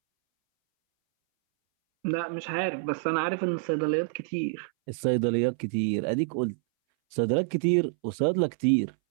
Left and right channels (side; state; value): left; silent; 60 dB below the other